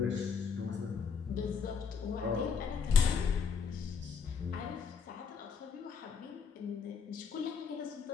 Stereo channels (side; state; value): right; quieter; 6.2 dB